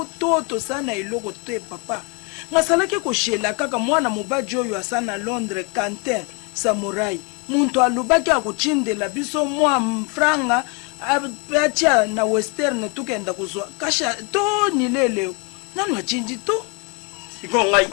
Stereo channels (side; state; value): right; quieter; 32.7 dB